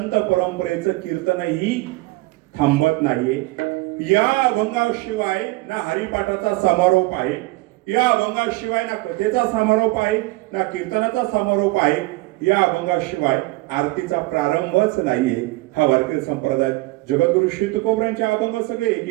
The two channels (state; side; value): quieter; left; 21.3 dB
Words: परंपरेचं कीर्तनही थांबत नाहीये. या अभंगाशिवाय ना हरिपाठाचा समारोप आहे, या अभंगाशिवाय ना कथेचा समारोप आहे, ना कीर्तनाचा समारोप आहे, या अभंगाशिवाय आरतीचा प्रारंभच नाहीये. हा वारकरी संप्रदाय जगद्गुरु श्री तुकोबरांचे अभंग सगळे